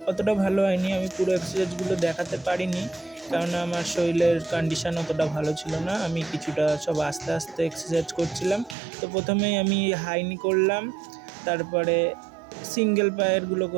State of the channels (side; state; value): left; drops out; at 8.8 s